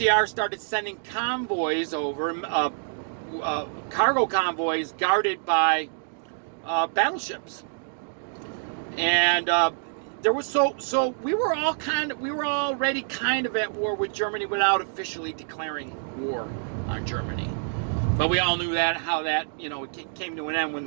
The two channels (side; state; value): left; silent; digital silence